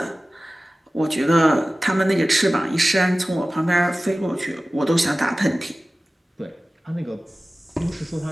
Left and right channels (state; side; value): normal; both; correlation 0.97